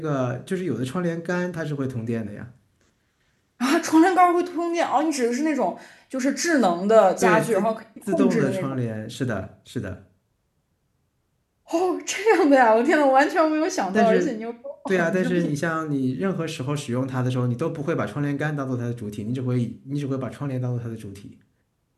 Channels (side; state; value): both; identical; correlation 1.00